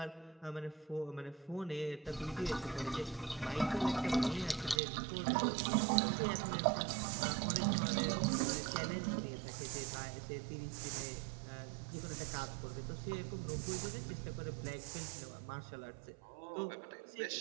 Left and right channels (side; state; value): left; drops out; at 4.8 s